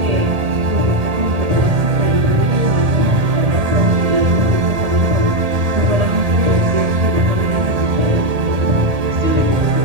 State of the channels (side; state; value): left; late; 1.8 ms